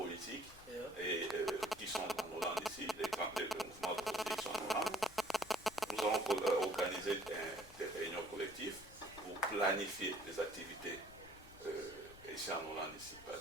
et, qui sont en Hollande ici, les mouvements politiques qui sont en Hollande. Nous avons organisé des réunions collectives pour planifier les activités ici en Hollande ici. Par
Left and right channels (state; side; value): noise; left; rumble, 20 dB below the sound